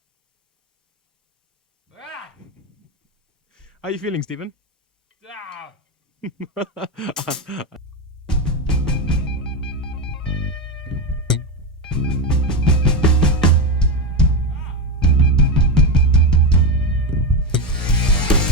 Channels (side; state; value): both; normal; correlation 0.13